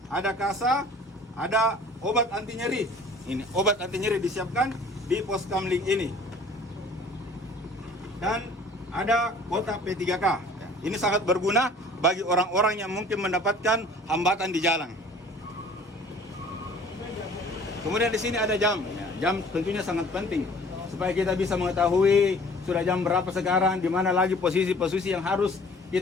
ada kasa, ada obat anti nyeri. Ini obat anti nyeri disiapkan di pos kamling ini. Dan ada kota P3K. Ini sangat berguna bagi orang-orang yang mungkin mendapatkan hambatan di jalan. Kemudian di sini ada jam. Jam tentunya sangat penting supaya kita bisa mengetahui sudah jam berapa sekarang, di mana lagi posisi-posisi yang harus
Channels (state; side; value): normal; both; correlation 0.50